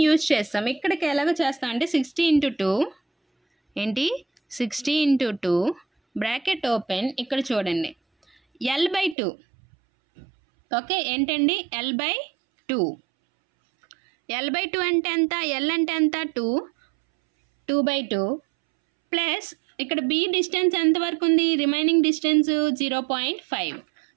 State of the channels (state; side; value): drops out; left; at 9.2 s